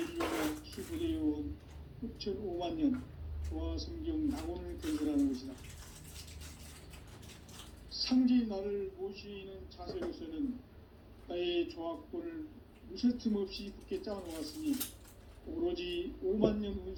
수부되어온 후천 5만년 조화성경 낙원을 건설하는 것이다. 상제인 나를 모시는 자세로서는 나의 조화권을 무쇠틈 없이 굳게 짜놓았으니 오로지 5만년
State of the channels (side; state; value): both; identical; correlation 1.00